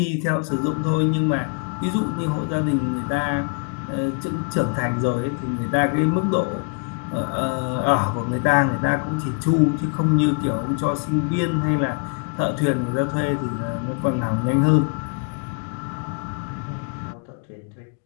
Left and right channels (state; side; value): quieter; right; 39.3 dB